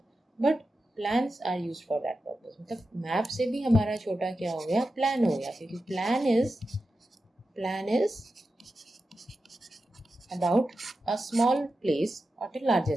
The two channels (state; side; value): normal; both; correlation 0.91